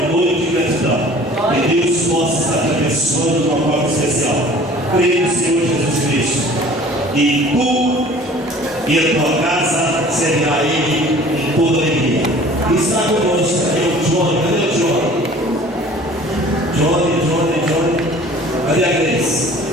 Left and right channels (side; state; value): both; normal; correlation 0.48